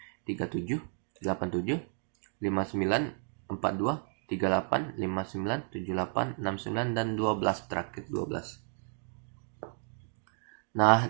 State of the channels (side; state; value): left; silent; 56 dB below the other